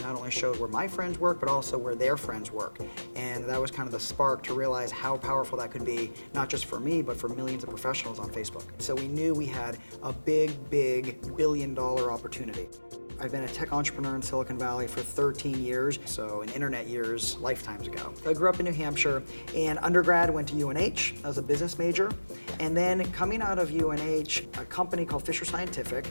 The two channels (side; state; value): both; inverted; correlation -1.00